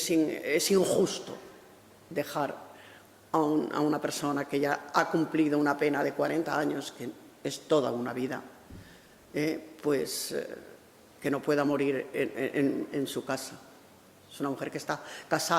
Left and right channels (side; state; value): both; identical; correlation 1.00